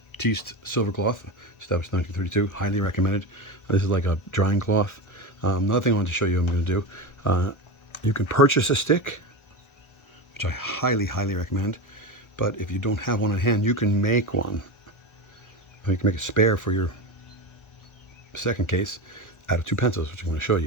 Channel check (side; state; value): right; late; 1.3 ms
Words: silver cloth, established 1932. Highly recommended. This is like a drying cloth. Another thing I wanted to show you I'm going to do. You can purchase a stick, which I highly recommend. But if you don't have one on hand, you can make one. You can make a spare for your second case out of 2 pencils, which I'm going to show